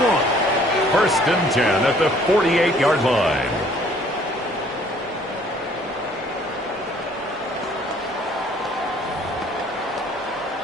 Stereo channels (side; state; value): both; normal; correlation 0.58